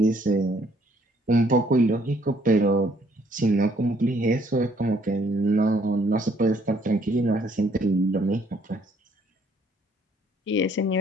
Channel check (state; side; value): normal; both; correlation 0.65